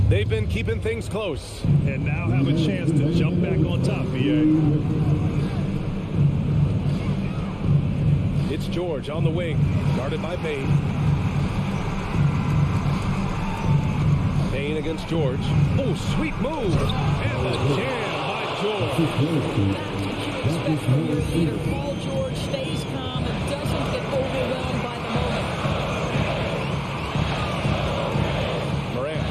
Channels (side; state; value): both; identical; correlation 1.00